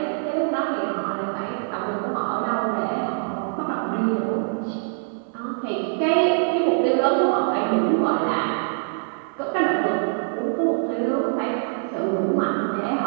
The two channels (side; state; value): left; silent; 63 dB below the other